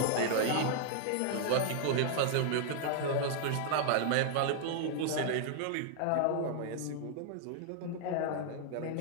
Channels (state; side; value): different; both; correlation -0.01